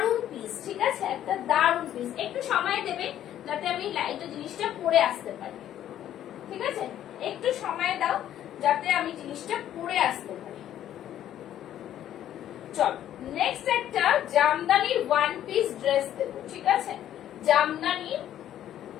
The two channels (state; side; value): quieter; right; 11.5 dB